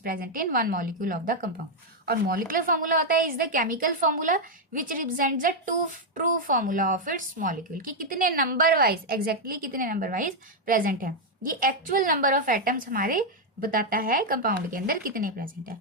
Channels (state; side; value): normal; both; correlation 0.00